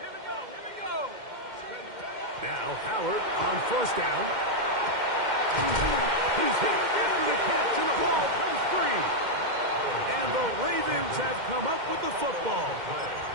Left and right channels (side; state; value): left; late; 2.1 ms